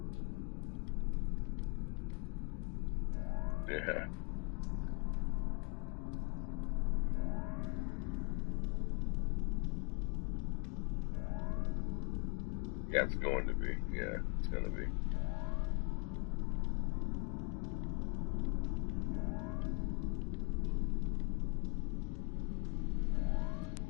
Yeah. Yeah, it's going to be. Yeah, it's gonna be.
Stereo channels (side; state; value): right; quieter; 34.3 dB